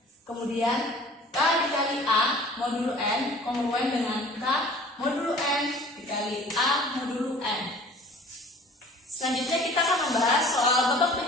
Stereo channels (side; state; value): both; normal; correlation 0.47